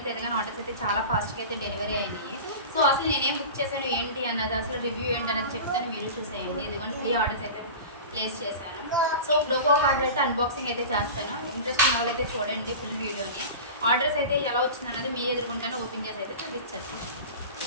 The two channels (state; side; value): inverted; both; correlation -0.32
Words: తెలియదు కానీ ఆర్డర్స్ అయితే చాలా ఫాస్ట్గా అయితే డెలివరీ అయినాయి. సో అసలు నేనేం బుక్ చేశాను ఏంటి అన్నది, అసలు రివ్యూ ఏంటి అన్నది చెప్తాను, మీరు చూసేయండి. ఇదిగోండి 3 ఆర్డర్స్ అయితే ప్లేస్ చేశాను. సో ఇప్పుడు ఒక్కొక్క ఆర్డర్ అయితే అన్బాక్సింగ్ అయితే చేస్తాను. ఇంట్రెస్ట్ ఉన్న వాళ్ళు అయితే చూడండి ఫుల్ వీడియోని. ఆర్డర్స్ అయితే ఎలా వచ్చింది అన్నది మీ ఎదుర్కొంటాను ఓపెన్ చేసి అయితే చూపించేస్తాను.